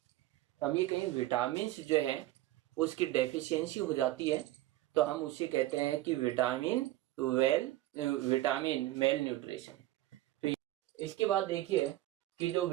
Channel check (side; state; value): left; quieter; 16.1 dB